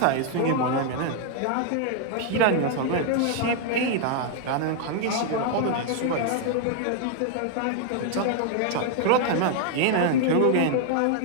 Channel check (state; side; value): different; both; correlation 0.00